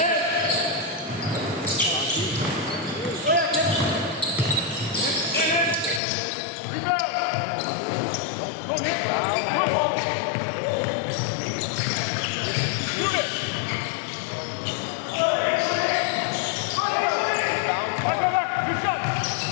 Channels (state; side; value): drops out; right; at 6.0 s